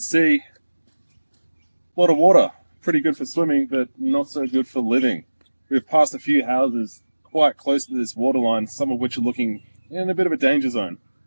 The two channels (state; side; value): inverted; both; correlation -1.00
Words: a lot of water. Pretty good for swimming, but not so good for living. We've passed a few houses quite close to this waterline, some of which are looking in a bit of a danger zone.